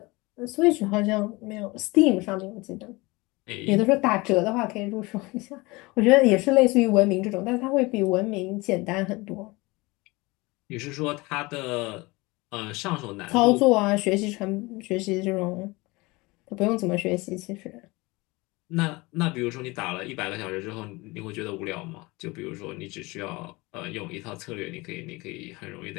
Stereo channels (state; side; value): quieter; right; 23.6 dB